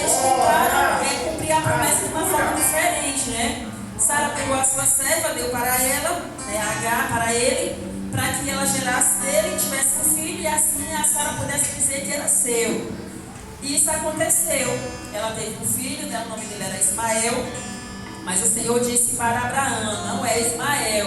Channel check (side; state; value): both; identical; correlation 1.00